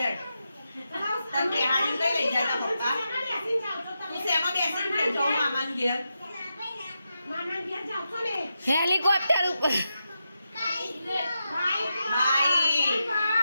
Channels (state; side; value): inverted; both; correlation -0.87